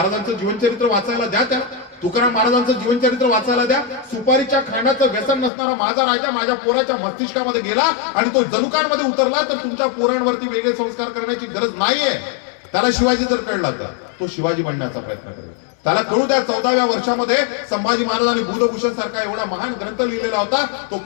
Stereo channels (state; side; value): drops out; right; at 5.5 s